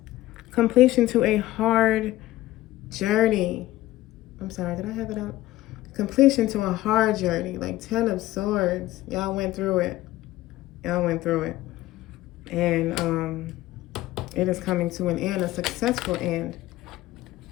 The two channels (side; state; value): right; quieter; 16.3 dB